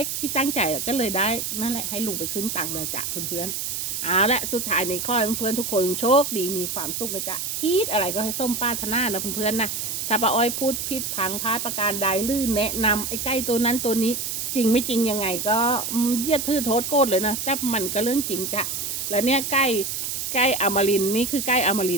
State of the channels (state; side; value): noise; right; hiss, 3 dB below the sound